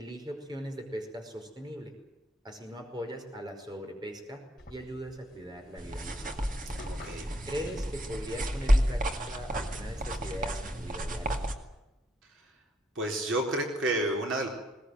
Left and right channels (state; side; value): normal; both; correlation 0.72